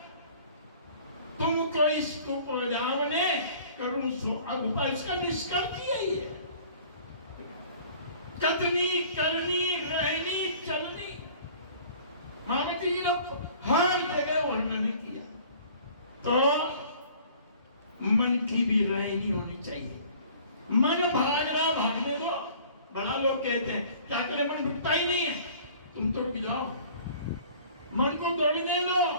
तुमको इसको उपजावने करूं सो अब, इसका निष्कर्ष यही है। कथनी करनी रहनी चलनी, महामती जी ने हर जगह वर्णन किया। तो मन की भी रहनी होनी चाहिए। मन भाग रहा, भागने दो। बड़ा लोग कहते हैं क्या करें, मन रुकता ही नहीं है। तुम तो रुक जाओ, मन को दौड़ने लो,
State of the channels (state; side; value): inverted; both; correlation -0.50